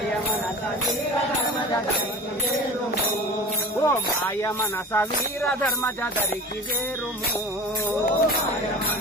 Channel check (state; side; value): normal; both; correlation 0.36